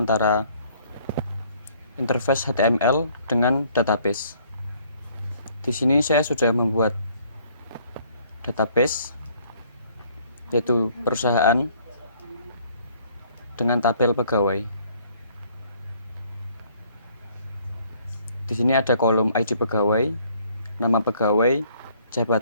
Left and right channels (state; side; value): inverted; both; correlation -0.62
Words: interface HTML dengan database. Di sini saya sudah membuat database, yaitu perusahaan dengan tabel pegawai. Di sini ada kolom ID pegawai, nama pegawai,